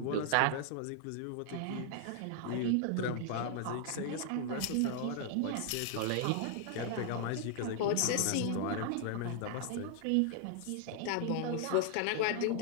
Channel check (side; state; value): both; different; correlation 0.00